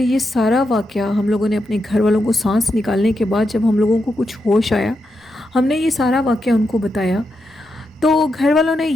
سارا واقعہ ہم لوگوں نے اپنے گھر والوں کو سانس نکالنے کے بعد جب ہم لوگوں کو کچھ ہوش آیا، ہم نے یہ سارا واقعہ ان کو بتایا تو گھر والوں نے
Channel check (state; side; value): normal; both; correlation 0.85